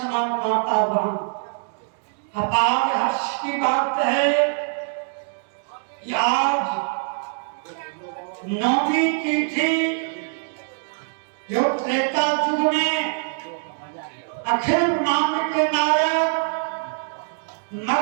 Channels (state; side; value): silent; left; digital silence